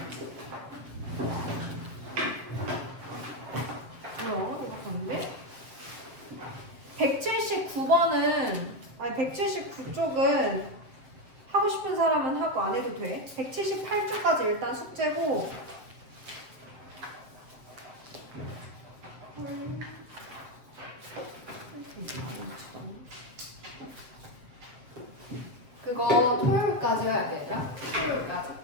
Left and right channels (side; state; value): left; late; 7.5 ms